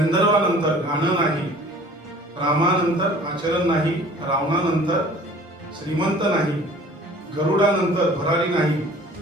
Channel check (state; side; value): normal; both; correlation 0.48